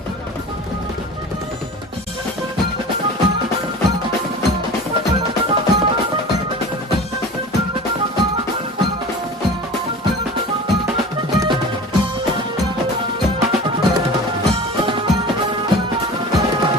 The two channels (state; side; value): normal; both; correlation 0.37